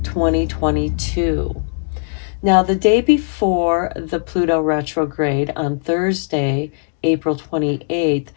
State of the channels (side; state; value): right; silent; digital silence